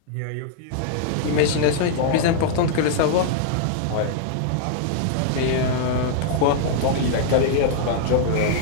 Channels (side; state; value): both; different; correlation -0.01